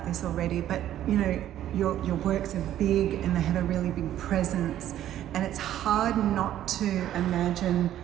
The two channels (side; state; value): left; quieter; 12.0 dB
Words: this already, but you know, your works are big and they have a really big presence, and it's hard not to imagine